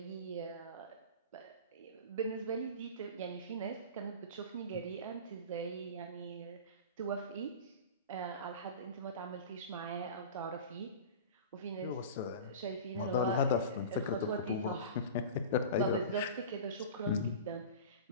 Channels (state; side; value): inverted; both; correlation -0.33